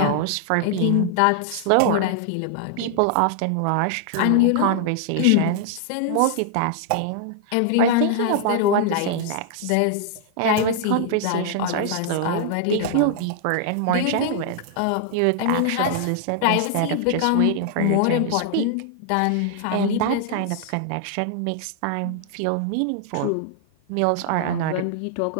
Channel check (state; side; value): different; both; correlation -0.01